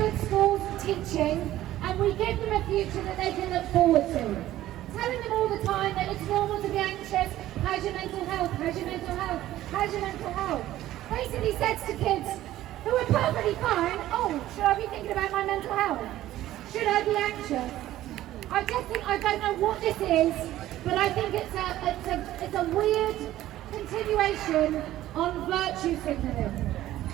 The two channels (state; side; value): quieter; left; 14.2 dB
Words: schools teaching, and we give them a future that they can look forward to. Telling them all the time that it's normal to be anxious, how's your mental health, how's your mental health, how's your mental health? Basically says to kids who are perfectly fine, oh, should I be thinking about my mental health? Should I be anxious? I just think, I don't know what this is, but I think it's a weird continuation on virtue signaling,